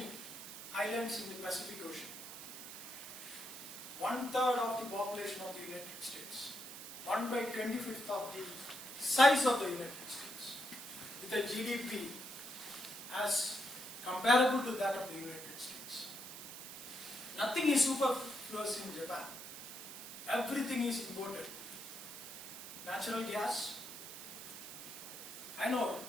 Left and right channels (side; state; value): right; noise; hiss, 11 dB below the sound